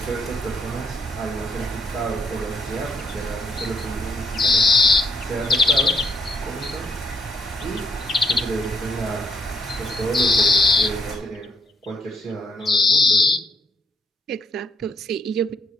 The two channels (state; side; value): normal; both; correlation 0.71